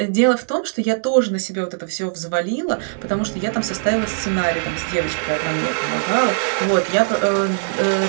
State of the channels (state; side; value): silent; left; digital silence